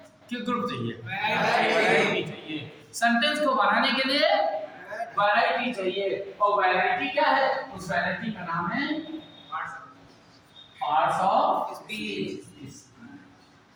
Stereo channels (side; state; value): both; identical; correlation 1.00